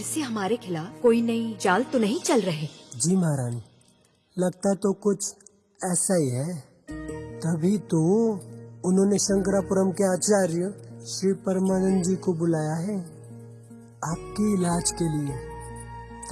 से हमारे खिलाफ कोई नई चाल तो नहीं चल रहे? जी महारानी, लगता तो कुछ ऐसा ही है। तभी तो उन्होंने शंकरापुरम के आचार्य श्री परमानंद जी को बुलाया है आपके इलाज के लिए,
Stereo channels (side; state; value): both; identical; correlation 1.00